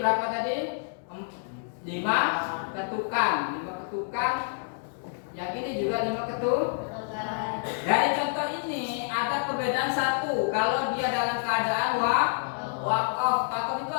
tadi? 5 ketukan. 5 ketukan. Yang ini juga 5 ketukan. Dari contoh ini ada perbedaan satu. Kalau dia dalam keadaan keadaan wakaf. Wakaf itu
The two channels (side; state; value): right; silent; digital silence